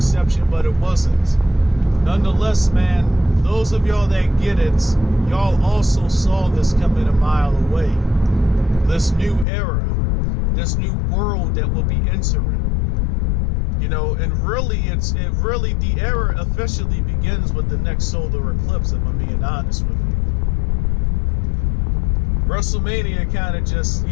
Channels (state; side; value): drops out; right; at 9.5 s